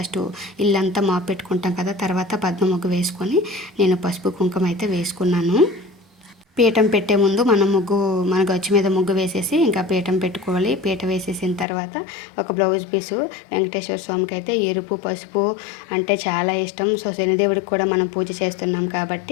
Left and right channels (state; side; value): drops out; right; at 11.7 s